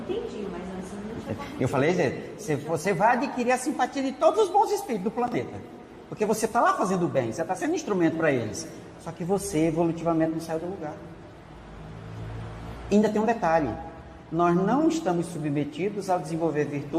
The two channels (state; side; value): identical; both; correlation 1.00